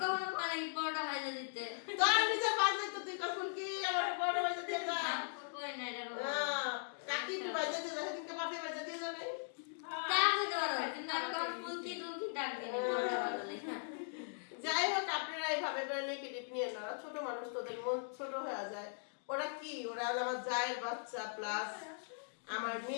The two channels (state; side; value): silent; right; digital silence